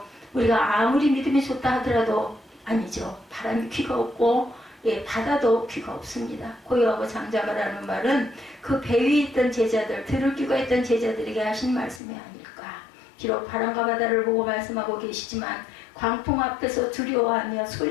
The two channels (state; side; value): drops out; right; at 12.0 s